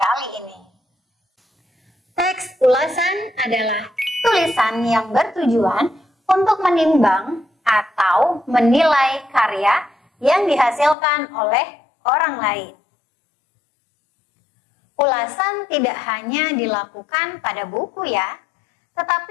ini. Teks ulasan adalah tulisan yang bertujuan untuk menimbang atau menilai karya yang dihasilkan oleh orang lain. Ulasan tidak hanya dilakukan pada buku ya,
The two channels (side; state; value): right; drops out; at 11.0 s